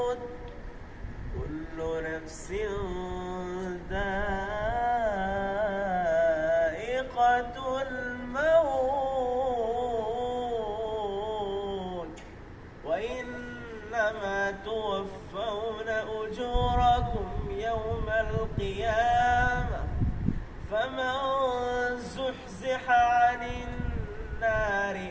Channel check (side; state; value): both; identical; correlation 1.00